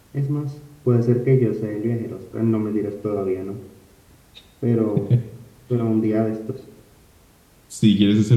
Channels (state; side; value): identical; both; correlation 1.00